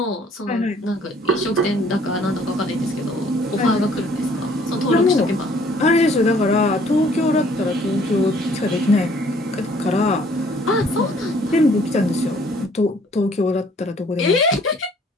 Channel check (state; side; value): normal; both; correlation 0.59